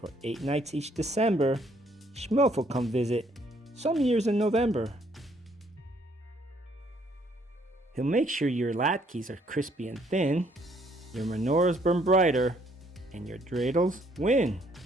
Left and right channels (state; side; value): normal; both; correlation 0.66